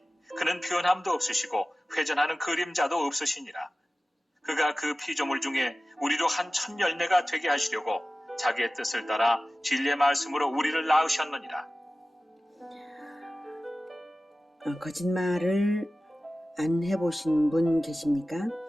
그는 변함도 없으시고 회전하는 그림자도 없으시니라. 그가 그 피조물 중에 우리로 한 첫 열매가 되게 하시려고 자기의 뜻을 따라 진리의 말씀으로 우리를 낳으셨느니라. 거짓말을 안 해보신 분 계십니까?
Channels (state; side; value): normal; both; correlation 0.96